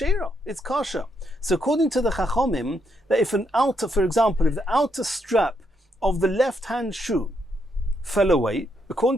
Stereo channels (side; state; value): both; normal; correlation 0.77